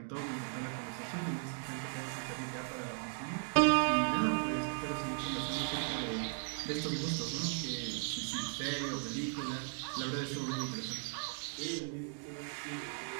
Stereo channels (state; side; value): silent; left; 53 dB below the other